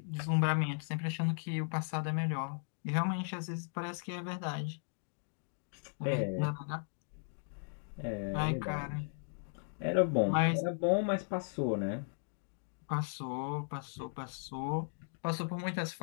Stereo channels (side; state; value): right; silent; digital silence